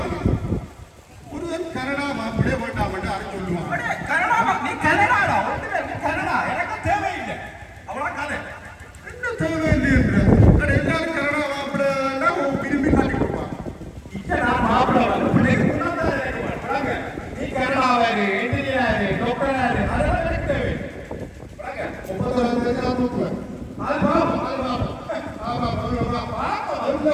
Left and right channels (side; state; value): both; identical; correlation 1.00